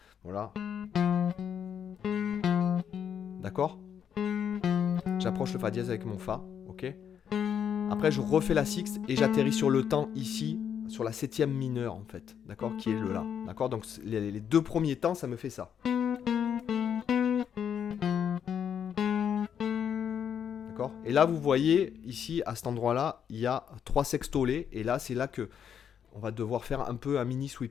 Voilà. D'accord ? J'approche le fa dièse avec mon fa. Ok ? Après, je refais la sixte et j'atterris sur le temps ici, sur la septième mineure en fait. D'accord ? Qui est le la. D'accord ? Donc les 2 premiers temps, ça me fait ça. Et là, vous voyez, ici, à cet endroit-là, il y a 3 sextolés. Et là, c'est là que on va devoir faire un peu un mini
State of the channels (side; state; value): right; quieter; 8.3 dB